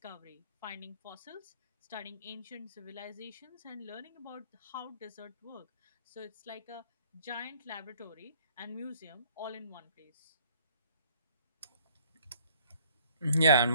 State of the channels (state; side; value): inverted; both; correlation -0.59